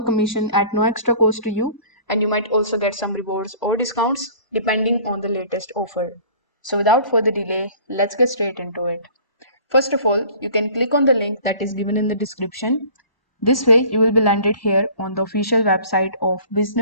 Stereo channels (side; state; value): right; late; 1.0 ms